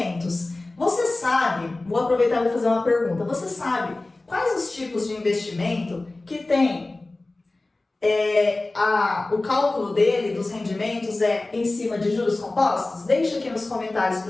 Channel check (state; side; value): quieter; right; 3.0 dB